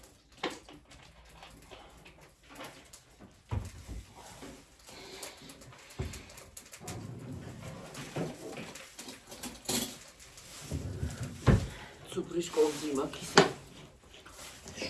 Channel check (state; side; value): identical; both; correlation 1.00